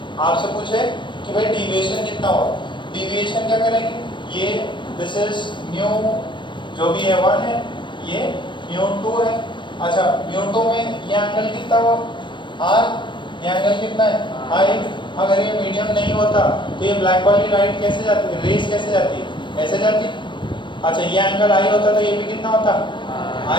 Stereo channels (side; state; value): right; late; 0.23 ms